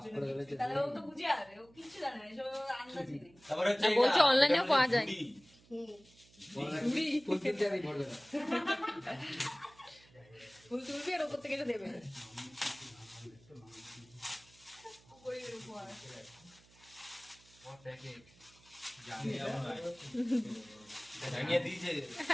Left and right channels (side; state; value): right; noise; hum, 27 dB below the sound